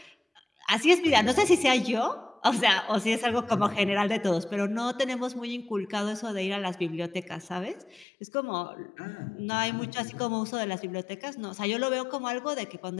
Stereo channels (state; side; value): drops out; right; at 8.1 s